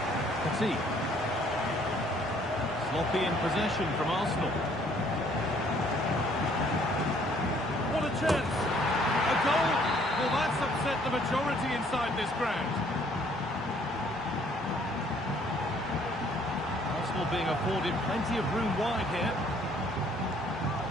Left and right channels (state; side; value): normal; both; correlation 0.62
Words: Petit. Sloppy in possession from Arsenal. What a chance! A goal! Well, that's upset the majority inside this ground. Arsenal being afforded plenty of room wide here.